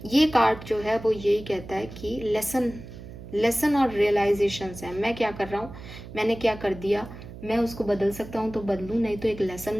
ये कार्ड जो है वो यही कहता है कि लेसन और रियलाइजेशंस है। मैं क्या कर रहा हूँ, मैंने क्या कर दिया, मैं उसको बदल सकता हूँ तो बदलूँ, नहीं तो एक लेसन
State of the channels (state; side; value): noise; right; hum, 14 dB below the sound